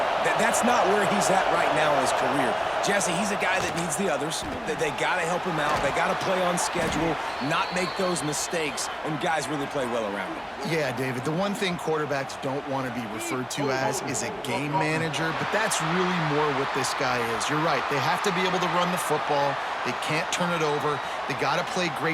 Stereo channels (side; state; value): both; identical; correlation 1.00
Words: That's not where he's at right now in his career. Jesse, he's a guy that needs the others. They got to help him out. They got to play on schedule, not make those mistakes, and guys really play well around him. Yeah, David, the one thing quarterbacks don't want to be referred to as is a game manager, but that's really more what this guy is. You're right. They have to be able to run the football. They can't turn it over. They got to play